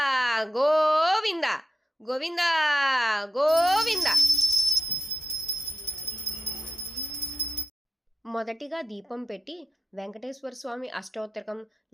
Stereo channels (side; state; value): both; normal; correlation 0.89